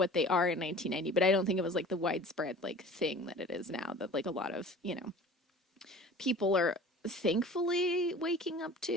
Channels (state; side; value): normal; both; correlation 0.43